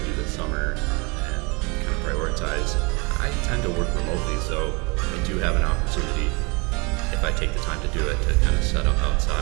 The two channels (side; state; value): left; quieter; 29.2 dB